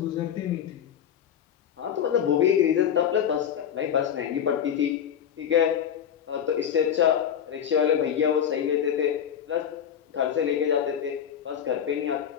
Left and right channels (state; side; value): quieter; right; 9.0 dB